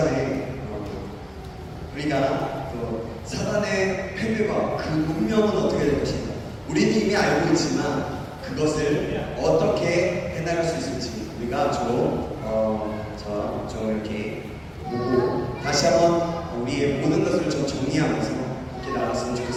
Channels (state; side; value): identical; both; correlation 1.00